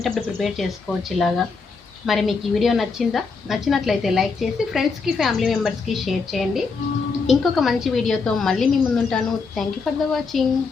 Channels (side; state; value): right; quieter; 4.7 dB